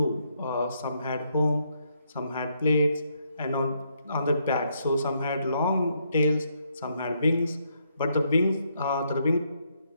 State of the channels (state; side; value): inverted; both; correlation -0.75